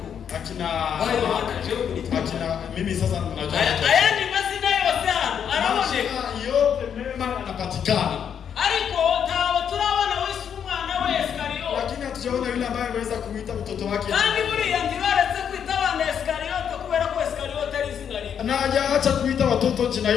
akina mimi sasa najua. Haya ni mazina yote hano. Araoneka yote mema anapatikana. Ariko tawo turabona Yesu umwana wa Iskariote. Lakini hatujaona yule ambaye ameweza kuita mtoto wake. Kandi buriya ntibaretse kwita abana Iskariote kubera ko Iskariote ari izina ribi. Na hajaacha kuita watoto jina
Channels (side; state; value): right; quieter; 8.1 dB